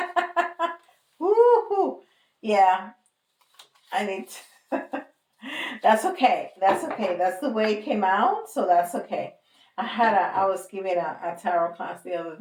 Woohoo! Yeah, I need to. That's okay. That's okay. That's the way it came out, so that's okay. I was giving a tarot class the other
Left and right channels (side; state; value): both; identical; correlation 1.00